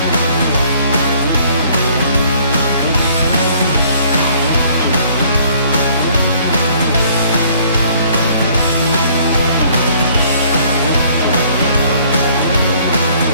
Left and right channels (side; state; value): both; inverted; correlation -0.59